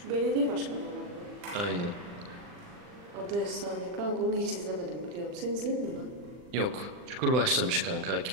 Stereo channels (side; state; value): left; late; 40 ms